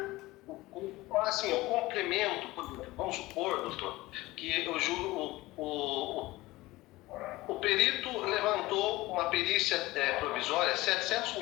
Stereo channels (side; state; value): right; quieter; 19.3 dB